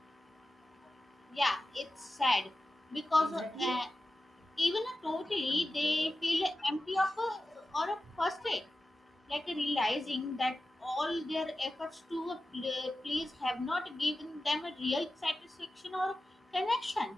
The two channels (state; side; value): normal; both; correlation 0.93